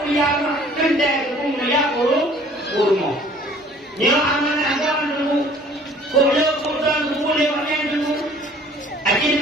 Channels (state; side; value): normal; both; correlation 0.53